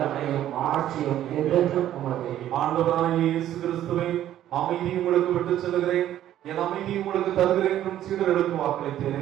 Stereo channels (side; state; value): left; quieter; 12.1 dB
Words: ஆட்சியும் என்றென்றும் உமதே. ஆண்டவராகிய இயேசு கிறிஸ்துவை அமைதியை உங்களுக்கு விட்டுச் செல்கிறேன், என் அமைதியை உங்களுக்கு தருகிறேன் என்றும் சீடர்களுக்கு